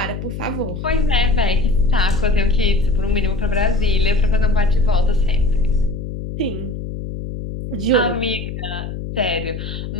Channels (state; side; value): noise; left; hum, 7 dB below the sound